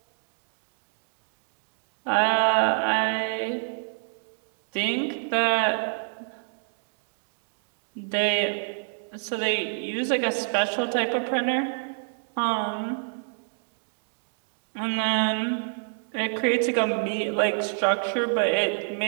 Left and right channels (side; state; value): left; silent; digital silence